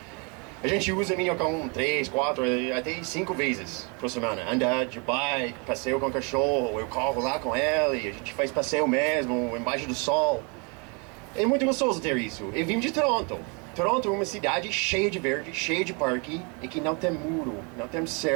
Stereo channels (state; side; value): quieter; left; 33.0 dB